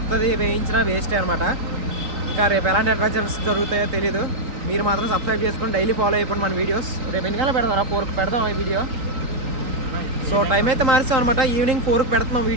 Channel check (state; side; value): late; left; 3.8 ms